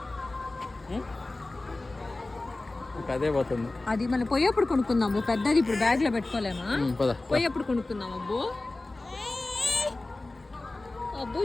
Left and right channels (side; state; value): right; quieter; 3.0 dB